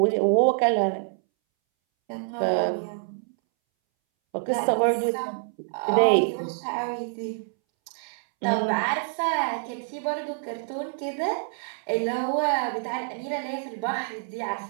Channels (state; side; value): silent; left; 61 dB below the other